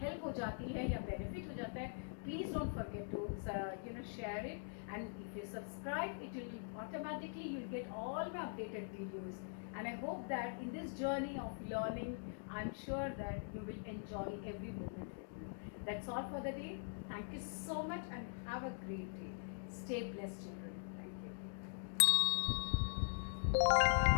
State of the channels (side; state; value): right; silent; digital silence